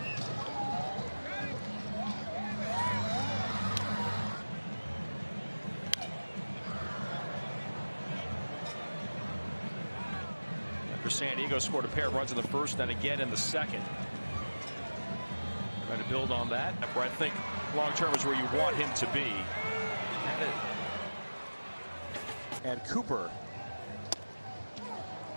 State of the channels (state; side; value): inverted; both; correlation -1.00